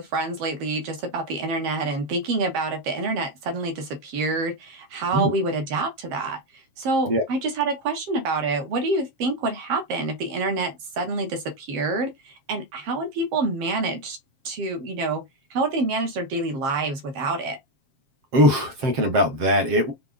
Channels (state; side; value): late; left; 7.5 ms